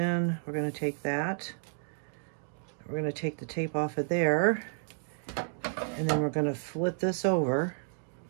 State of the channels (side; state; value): left; silent; digital silence